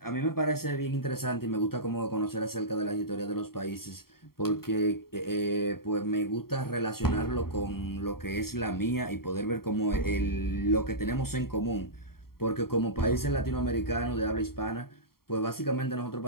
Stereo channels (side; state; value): right; late; 0.93 ms